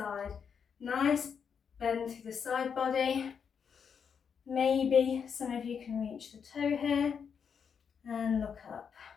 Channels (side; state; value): right; quieter; 6.8 dB